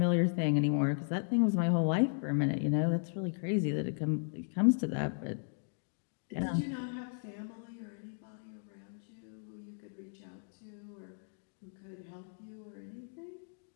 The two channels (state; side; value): silent; right; digital silence